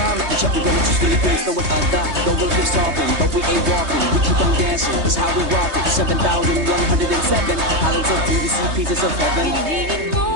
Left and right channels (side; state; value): left; late; 3.2 ms